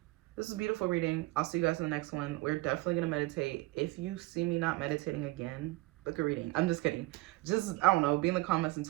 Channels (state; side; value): quieter; left; 20.4 dB